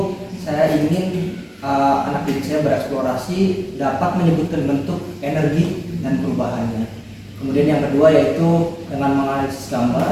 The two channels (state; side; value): identical; both; correlation 1.00